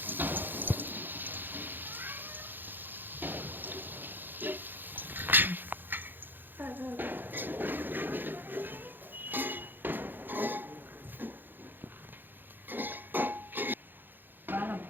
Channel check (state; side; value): late; left; 0.093 ms